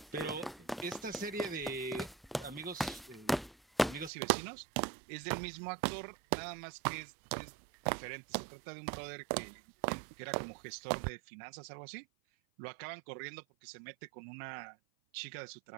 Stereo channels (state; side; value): drops out; left; at 4.1 s